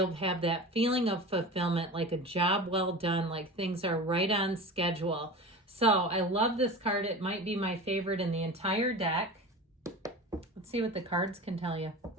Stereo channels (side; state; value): both; normal; correlation 0.33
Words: have that feeling of fulfillment, like a job well done, like things are right on schedule. So I love this card. It might be my favorite in the entire deck. Let's see what the cards can tell you.